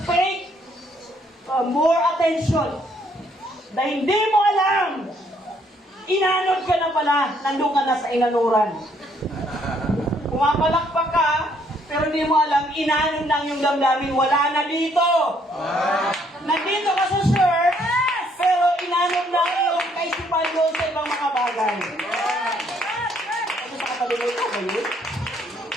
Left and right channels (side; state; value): both; normal; correlation 0.68